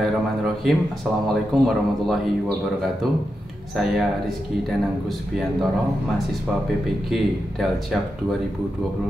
Assalamualaikum warahmatullahi wabarakatuh. Saya Rizky Dananggus Biantoro, mahasiswa PPG Daljab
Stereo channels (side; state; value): both; normal; correlation 0.88